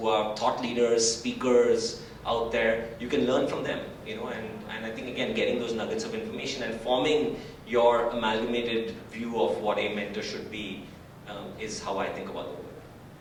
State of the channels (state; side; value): identical; both; correlation 1.00